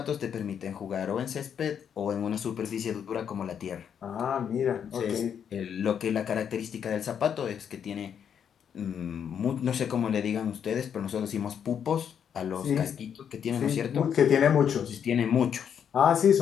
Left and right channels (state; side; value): quieter; right; 8.1 dB